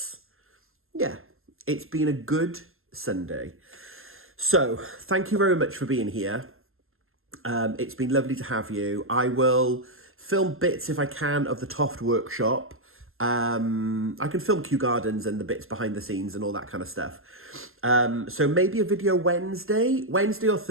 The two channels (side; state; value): left; late; 0.61 ms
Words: been a good Sunday. So thank you very much for being here. It's been lovely to have you. I will film bits if I can of the Toft workshop. I can film Kew Gardens and the bits behind the scenes and all that kind of stuff. So maybe a video Wednesday or